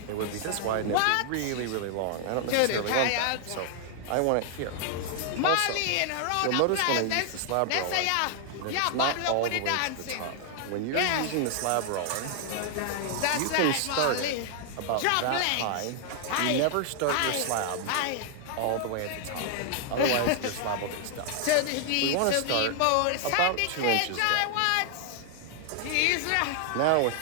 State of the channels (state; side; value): different; both; correlation 0.00